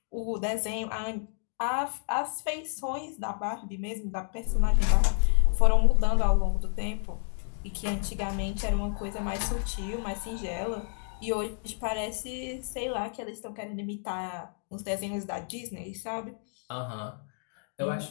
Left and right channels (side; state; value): right; silent; 58 dB below the other